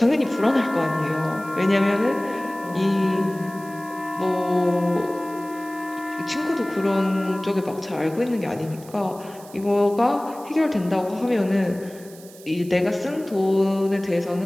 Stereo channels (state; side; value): noise; right; hiss, 21 dB below the sound